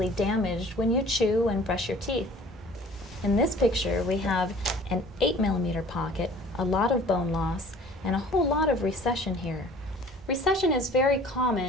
damaged when you chew and brush your teeth. In this picture, we have an 8mm pocket, a lot of bone loss, and a whole lot of recession here. Recession is very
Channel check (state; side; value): normal; both; correlation 0.49